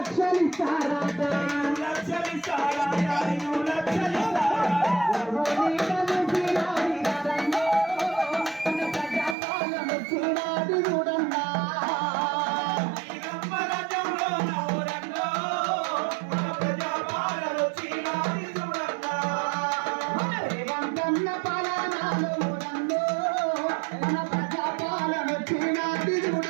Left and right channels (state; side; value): drops out; left; at 9.3 s